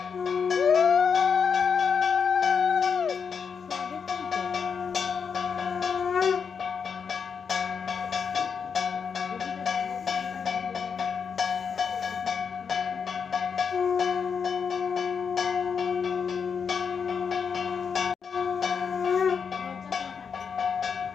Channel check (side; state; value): right; quieter; 6.3 dB